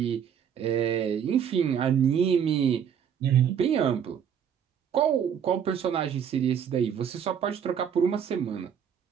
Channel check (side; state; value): left; quieter; 8.2 dB